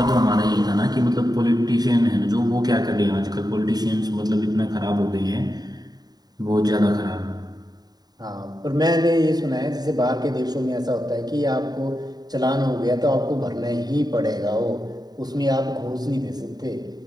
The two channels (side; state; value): left; late; 0.19 ms